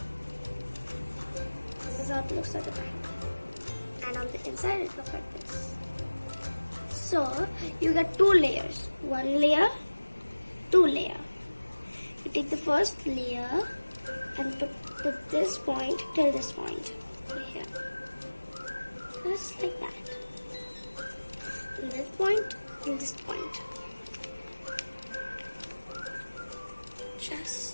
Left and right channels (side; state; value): both; inverted; correlation -1.00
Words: This is how it looks at the triangle. And on the inside it looks like this. So you get two layers. One layer, two layer. You take the first layer and put this point till this point. Here. Just like that. From this point till this point.